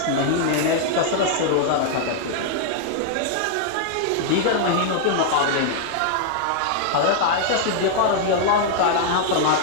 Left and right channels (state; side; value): different; both; correlation -0.01